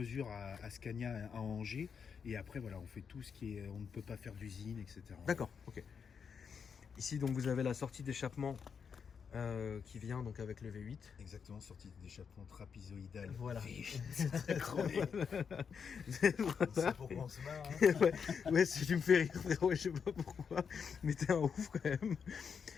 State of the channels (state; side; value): quieter; right; 6.5 dB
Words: à Scania, à Angers. Et après, voilà, on fait tout ce qui est... On ne peut pas faire d'usine, etc. D'accord, ok. Ici, donc, vous avez la sortie d'échappement qui vient donc avec le V8. Exactement, sortie d'échappement trapezoïdale. Voilà. C'est très crevé. C'est pourquoi on se marre. Hein. Ouais, si tu me fais rire, frérot, je sais pas pourquoi. Mais t'es un ouf quand même.